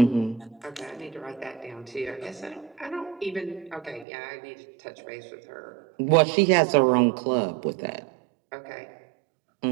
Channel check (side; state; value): left; drops out; at 4.0 s